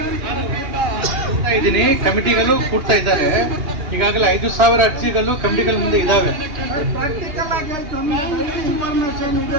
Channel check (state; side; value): late; left; 2.8 ms